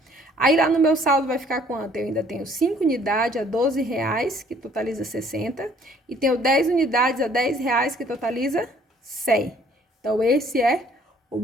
Aí lá no meu saldo vai ficar quanto? Eu ainda tenho 5 unidades a R$12, que totaliza 60, e tenho 10 unidades a R$10, que totaliza 100. Então esse é o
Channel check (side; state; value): both; normal; correlation 0.59